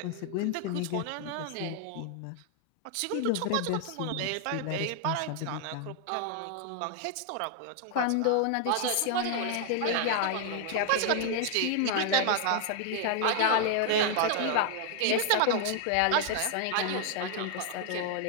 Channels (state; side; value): different; both; correlation 0.00